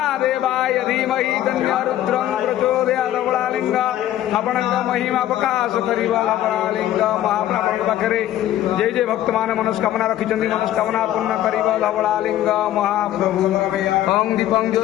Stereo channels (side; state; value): right; quieter; 12.9 dB